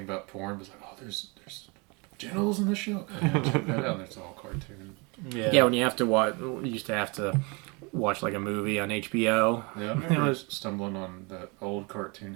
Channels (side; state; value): left; quieter; 29.5 dB